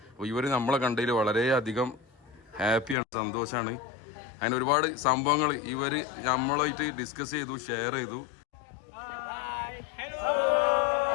അപ്പോൾ ഇവർ നമ്മളെ കണ്ടതിൽ വളരെയധികം ഹാപ്പിയാണ്, സന്തോഷമാണ്. അങ്ങനെ ഒരുപാട് സംഭവങ്ങൾ ഇവർ നമ്മളായിട്ട് ഡിസ്കസ് ചെയ്തു, ഷെയർ ചെയ്തു.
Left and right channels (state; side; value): drops out; right; at 3.0 s